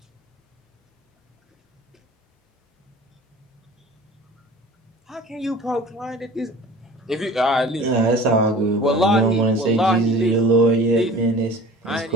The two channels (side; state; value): both; normal; correlation 0.43